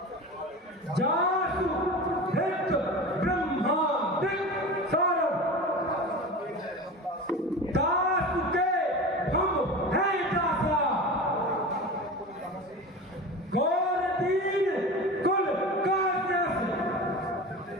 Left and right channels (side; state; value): both; normal; correlation 0.31